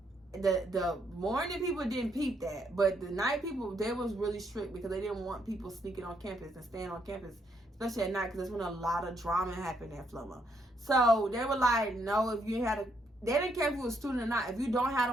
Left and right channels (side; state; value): both; normal; correlation 0.74